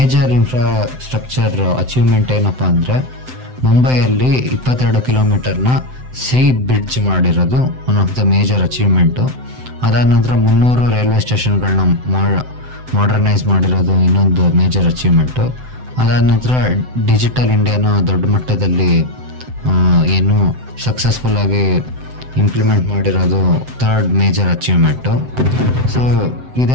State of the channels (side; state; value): left; late; 7.8 ms